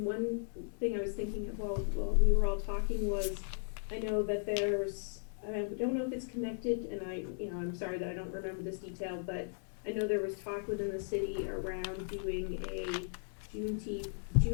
one thing I was thinking of while we were all talking was, I know that there's, I don't know if it's connected, and I'm sorry that I don't remember this detail, but I know there was talk within the city around doing a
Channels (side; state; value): right; silent; digital silence